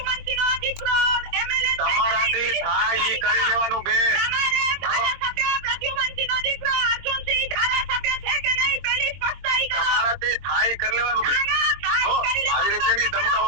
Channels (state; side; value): late; left; 22 ms